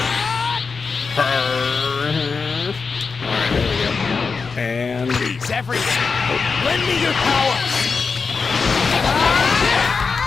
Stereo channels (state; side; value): quieter; right; 4.9 dB